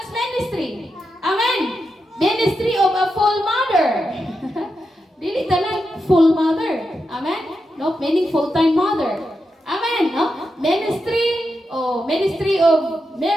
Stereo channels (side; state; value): both; normal; correlation 0.87